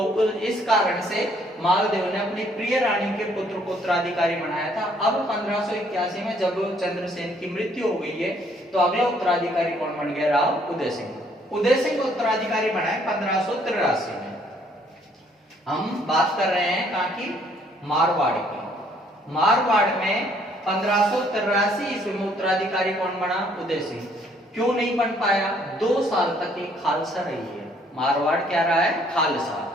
इस कारण से मालदेव ने अपनी प्रिय रानी के पुत्र को उत्तराधिकारी बनाया था। अब 1581 में जब चंद्रसेन की मृत्यु हो गई है, तो अगला उत्तराधिकारी कौन बन गया? राव उदय सिंह। उदय सिंह को उत्तराधिकारी बनाया 1583 में। हम बात कर रहे हैं कहाँ की? मारवाड़ की। मारवाड़ में 1583 ईस्वी में उत्तराधिकारी कौन बना? उदय सिंह। क्यों नहीं बन पाया? 2 साल तक ये खालसा रही है। मारवाड़ क्या रहा है? खालसा।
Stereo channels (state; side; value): normal; both; correlation 0.64